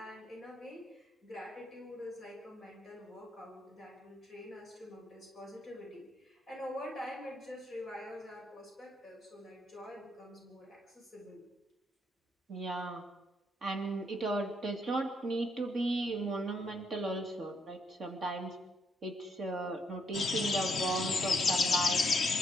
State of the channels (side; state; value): both; normal; correlation 0.74